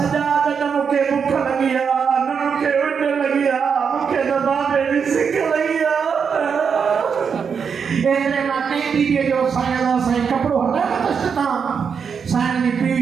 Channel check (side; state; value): left; quieter; 6.5 dB